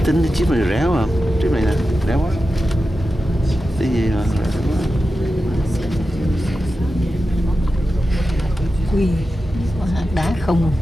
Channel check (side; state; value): both; normal; correlation 0.92